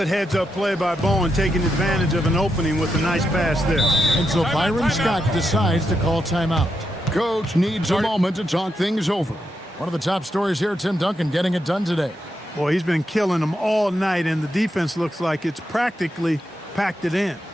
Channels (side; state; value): both; normal; correlation 0.84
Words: heads-up play by Bowen, taking advantage of an opening with a nice pass there. And so Byron Scott decides to call timeout. Coach needs a moment to talk things over. One of the top stories here, Tim Duncan getting it done today. Boy, he's been killing them all night, and the defense looks like it's practically packed it in.